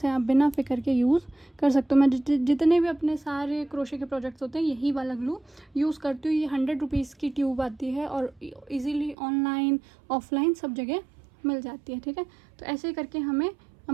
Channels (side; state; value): left; drops out; at 9.2 s